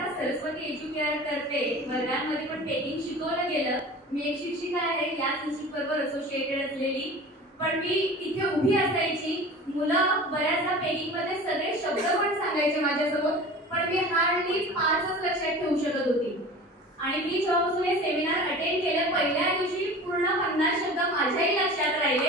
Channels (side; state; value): both; normal; correlation 0.38